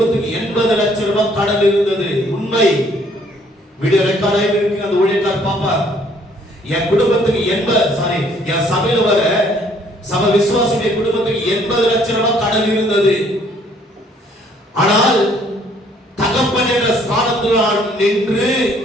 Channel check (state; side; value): normal; both; correlation 0.62